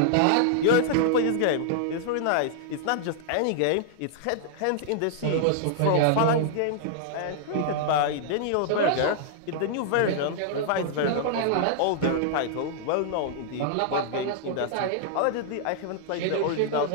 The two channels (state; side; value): different; both; correlation -0.01